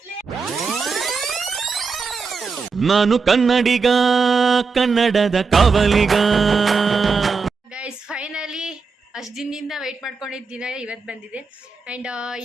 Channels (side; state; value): left; quieter; 4.8 dB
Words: ನಾನು ಕನ್ನಡಿಗ, ಕನ್ನಡದ ಕಾವಲಿಗ. ಗೈಸ್ ಫೈನಲಿ ಅಷ್ಟು ದಿನದಿಂದ ವೆಯ್ಟ್ ಮಾಡ್ಕೊಂಡಿದ್ದ ದಿನ ಇವತ್ತು ಬಂದಿದೆ. ಆ್ಯಂಡ್